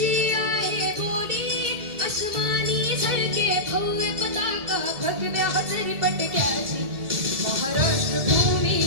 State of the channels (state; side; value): late; left; 2.3 ms